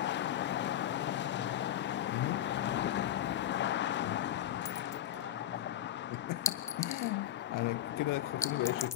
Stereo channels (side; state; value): right; quieter; 12.0 dB